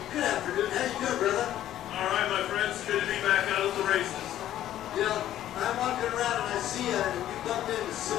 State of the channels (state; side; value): quieter; right; 12.4 dB